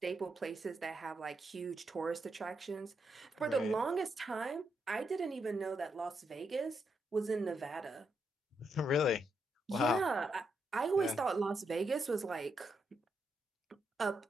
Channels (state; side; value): normal; both; correlation 0.81